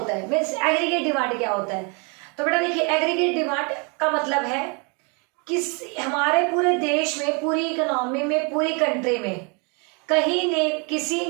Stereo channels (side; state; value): left; quieter; 33.7 dB